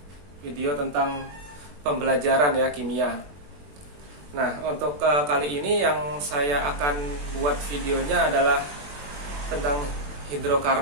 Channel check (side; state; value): left; late; 21 ms